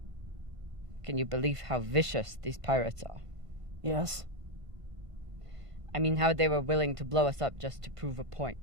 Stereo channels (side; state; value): left; late; 1.5 ms